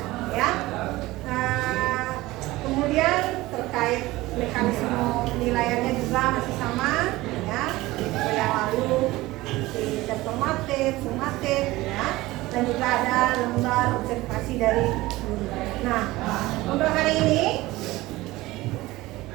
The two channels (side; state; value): left; quieter; 18.8 dB